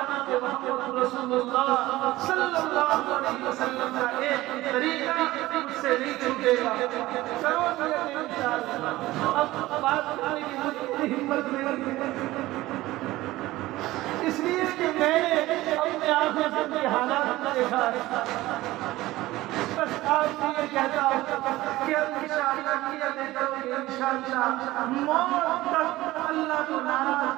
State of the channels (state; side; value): quieter; left; 17.6 dB